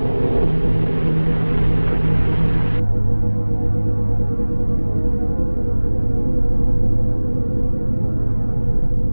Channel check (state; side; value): inverted; both; correlation -1.00